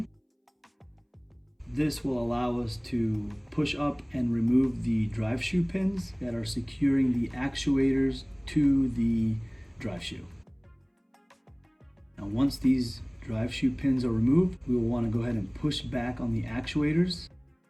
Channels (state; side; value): identical; both; correlation 1.00